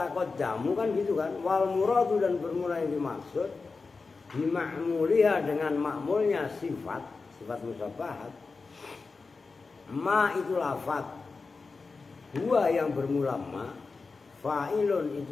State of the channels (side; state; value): right; quieter; 4.3 dB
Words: jamu kan gitu kan. Wal muradu dan bermula yang dimaksud bima'muliha dengan makmulnya sifat musabbahat. Ma itu lafaz, huwa yang bermula ma, fa'ilun